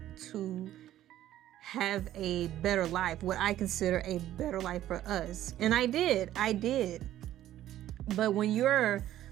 to have a better life, what I consider a better life for us. And I did. But when you're a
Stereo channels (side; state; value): left; quieter; 12.9 dB